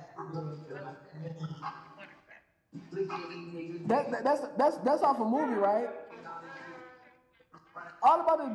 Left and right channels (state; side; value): identical; both; correlation 1.00